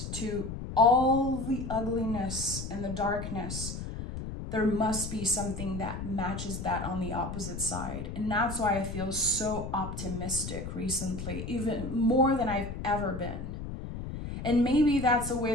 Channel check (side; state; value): left; noise; rumble, 7 dB below the sound